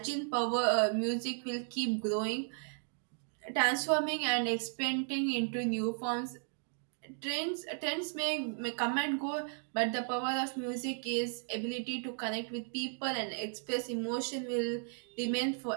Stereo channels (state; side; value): silent; left; 54 dB below the other